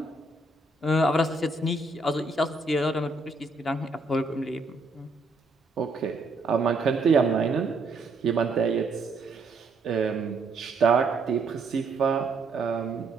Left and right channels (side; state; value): left; quieter; 3.3 dB